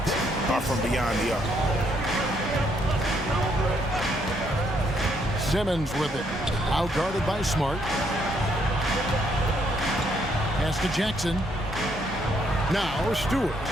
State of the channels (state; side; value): normal; both; correlation 0.71